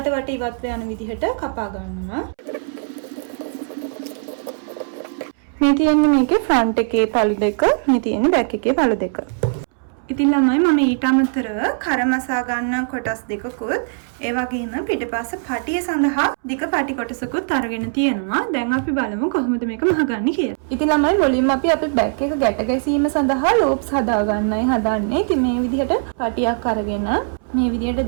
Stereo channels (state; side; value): silent; left; 65 dB below the other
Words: වට ඉවත් යන විදිහට කපා ගන්නවා. මේ තියෙන්නේ මේකේ ෆ්‍රන්ට් එකේ පළු දෙක, මේ තියෙන්නේ බෑක් එකේ පළු දෙක. ඉතින් ළමයි මම ඊට අමතරව කරමසා ගන්න කොටස් දෙකකුත් ඒ වගේම පිටපස්ස පටිය සඳහා දිග පටි කොටසකුත් අරගෙන තියෙනවා. දැන් අපි බලමු කොහොමද මේක මහගන්නේ කියලා. ඉතින් ළමයි මුලින්ම අපි අපේ බෑක් එක ගැට ගැසීම සඳහා ලූප්ස් හදා ගන්නයි හදන්නේ. ඉතින් මේ විදිහට පටියක් අරගෙන මේ විදිහට